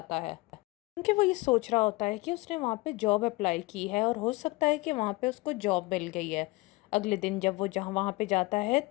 है, क्योंकि वो ये सोच रहा होता है कि उसने वहाँ पे जॉब अप्लाई की है और हो सकता है कि वहाँ पे उसको जॉब मिल गई है। अगले दिन जब वो जहाँ वहाँ पे जाता है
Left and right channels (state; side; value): quieter; right; 22.5 dB